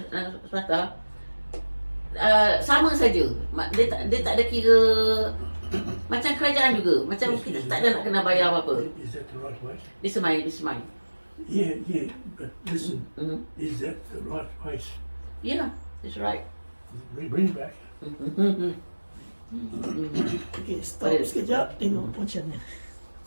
swasta, sama saja. Dia tak ada kira macam kerajaan juga. Macam kita tak ada nak kena bayar apa-apa. Is that the right way? This is mine. Yeah, but listen, is that the right place? Yeah, that's right. Bring it back. Okay, stop sekejap, tengok macam ni.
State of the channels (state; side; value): inverted; both; correlation -1.00